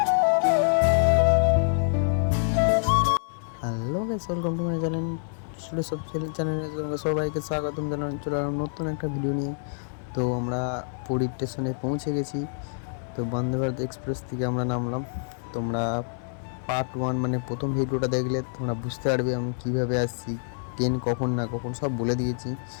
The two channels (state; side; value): silent; right; digital silence